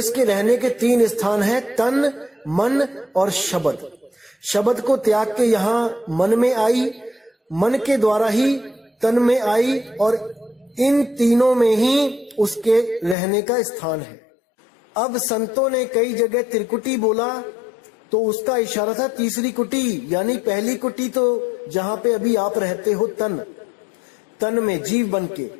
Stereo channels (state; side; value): drops out; right; at 13.2 s